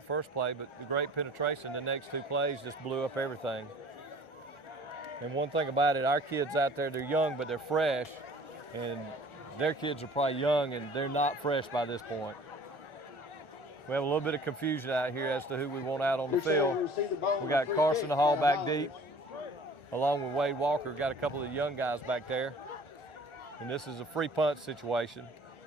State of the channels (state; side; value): late; right; 1.4 ms